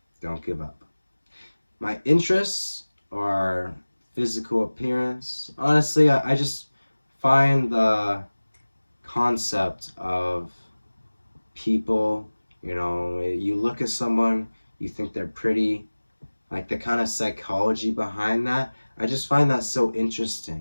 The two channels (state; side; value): inverted; both; correlation -1.00